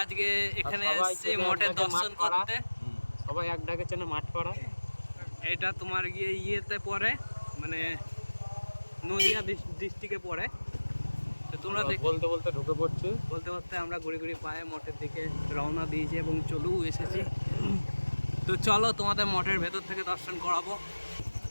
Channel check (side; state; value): both; inverted; correlation -1.00